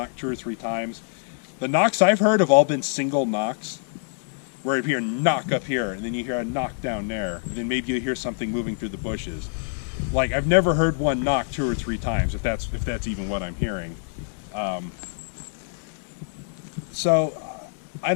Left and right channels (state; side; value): silent; right; digital silence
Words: 2 or 3 times. The knocks I've heard have all been single knocks, where you hear a knock up here, and then you hear a knock down there, and then maybe you hear something moving through the bushes. Like I've never heard one knock 2 or 3 times, if that's even what I'm hearing. So I